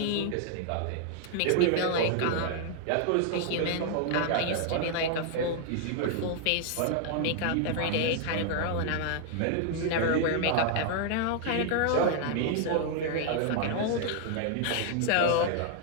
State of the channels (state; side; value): different; both; correlation 0.00